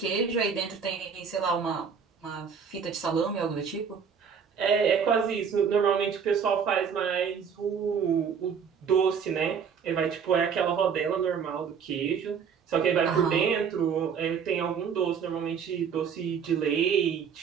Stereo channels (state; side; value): quieter; left; 6.7 dB